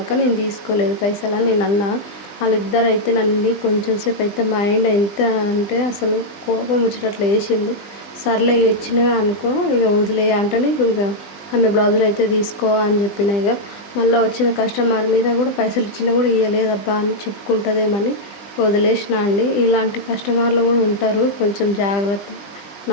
నేను తీసుకోలేదు పైసలు అని నేను అన్నా. వాళ్ళిద్దరు అయితే నన్ను కొంచెం సేపు అయితే మైండ్ ఎంత అంటే అసలు కోపం వచ్చేటట్లు వేసిండు. సర్లే ఇచ్చినవే అనుకో, ఇక వదిలే అంటే ఇక ఆమె బ్లౌజులు అయితే తీసుకో అని చెప్పిన. ఇక మళ్ళీ వచ్చిన కస్టమర్ మీద కూడా పైసలు ఇచ్చినా కూడా ఇవ్వలేదబ్బా అని చెప్పుకుంటుందేమని వదిలేసిన అండి. ఇలాంటి కస్టమర్లు కూడా ఉంటారు, కొంచెం జాగ్రత్త.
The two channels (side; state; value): right; late; 20 ms